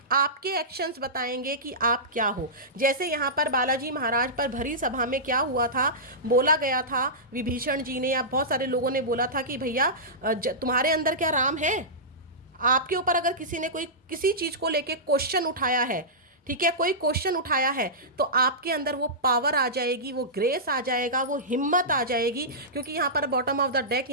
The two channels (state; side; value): normal; both; correlation -0.16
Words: आपके एक्शंस बताएंगे कि आप क्या हो। जैसे यहाँ पर बालाजी महाराज पर भरी सभा में क्या हुआ था, बोला गया था विभीषण जी ने या बहुत सारे लोगों ने बोला था कि भैया तुम्हारे अंदर क्या राम है। आपके ऊपर अगर किसी ने कोई किसी चीज़ को लेके क्वेश्चन उठाया है, ठीक है, कोई क्वेश्चन उठाया है, तो आपके अंदर वो पावर आ जाएगी, वो ग्रेस आ जाएगा, वो हिम्मत आ जाएगी। क्योंकि यहाँ पर बॉटम ऑफ द डेक